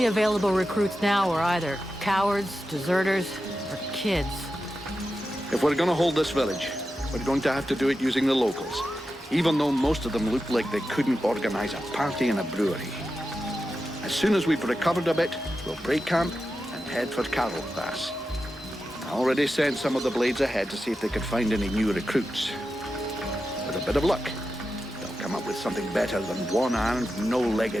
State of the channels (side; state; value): both; normal; correlation 0.91